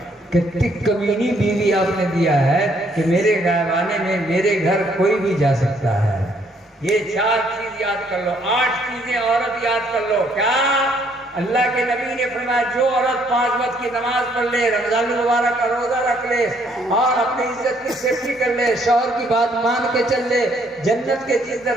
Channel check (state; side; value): normal; both; correlation 0.67